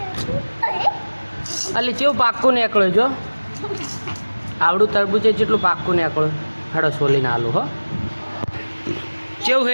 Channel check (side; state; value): both; inverted; correlation -1.00